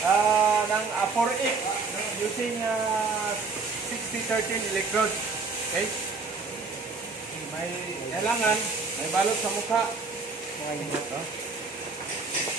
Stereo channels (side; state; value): left; quieter; 4.3 dB